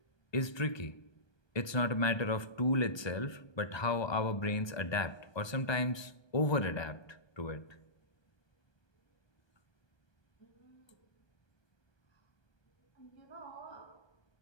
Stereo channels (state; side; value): late; right; 1.2 ms